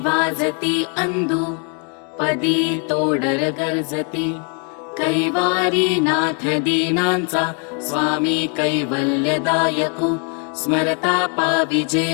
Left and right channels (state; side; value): quieter; right; 39.8 dB